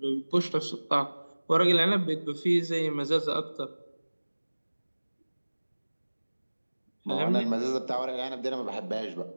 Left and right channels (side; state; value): both; inverted; correlation -1.00